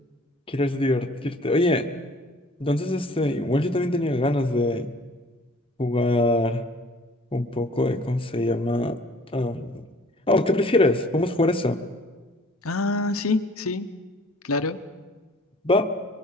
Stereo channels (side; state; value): both; normal; correlation 0.52